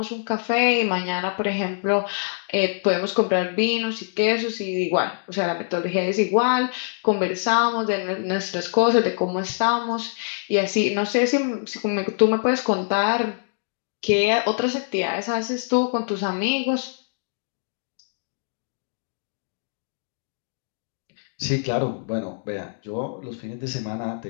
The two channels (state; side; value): silent; right; digital silence